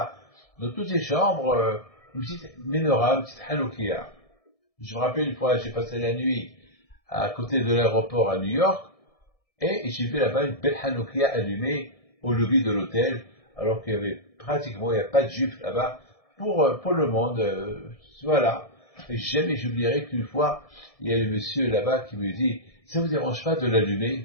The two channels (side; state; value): right; late; 1.7 ms